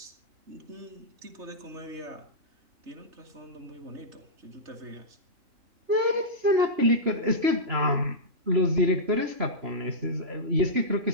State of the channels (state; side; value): late; left; 3.0 ms